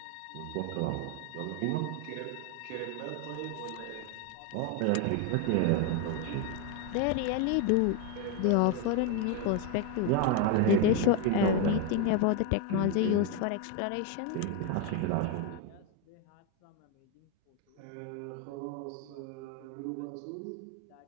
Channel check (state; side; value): different; both; correlation 0.02